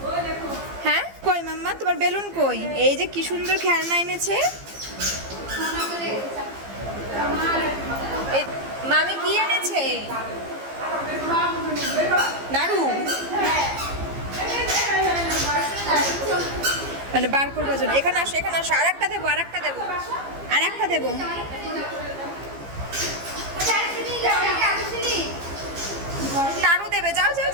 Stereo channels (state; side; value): late; left; 15 ms